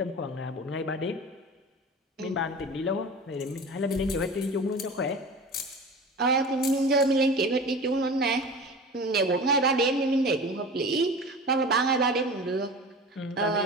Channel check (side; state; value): both; normal; correlation 0.35